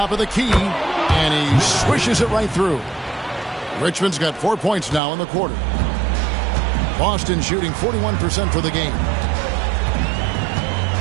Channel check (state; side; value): drops out; left; at 5.0 s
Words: of the key, and he swishes it right through. Richmond's got 4 points now in the quarter. Boston shooting 41% for the game.